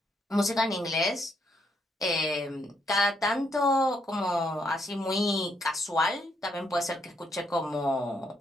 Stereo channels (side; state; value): both; normal; correlation 0.75